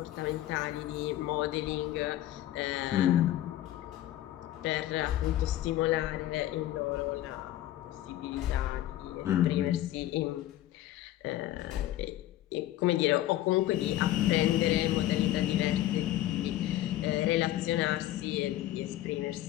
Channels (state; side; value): quieter; right; 14.0 dB